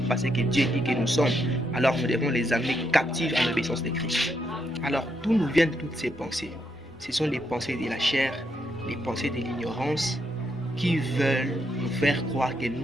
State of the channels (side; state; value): both; normal; correlation 0.78